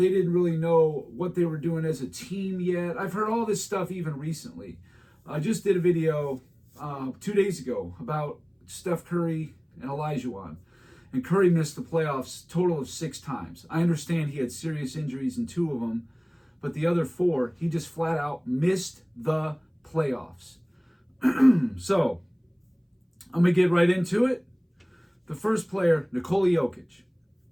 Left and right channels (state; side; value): identical; both; correlation 1.00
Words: really know what they were doing as a team yet. I've heard all this stuff even recently. I just did a video 2 days ago about Steph Curry and Isiah. And Curry missed the playoffs total of 6 times. I understand he had serious injuries in 2 of them, but the other 4, he just flat out missed the playoffs. So, I'm going to get right into it. The first player, Nikola Jokic.